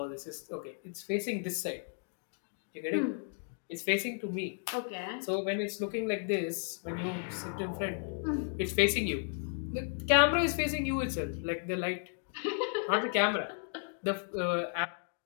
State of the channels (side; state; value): right; silent; 55 dB below the other